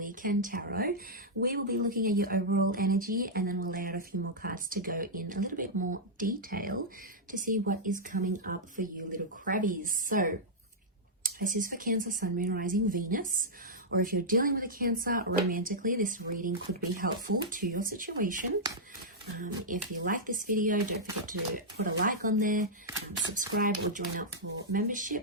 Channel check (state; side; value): normal; both; correlation -0.08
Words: tarot. We will be looking at your overall energy and then we'll lay out a few more cards to go in a little bit more detail to see what is coming up for you little crabbies. So this is for Cancer, Sun, Moon, Rising, Venus, or if you're dealing with a Cancer romantically, this reading could be helpful to your situation. If you like this video, don't forget to put a like on there, subscribe or join up for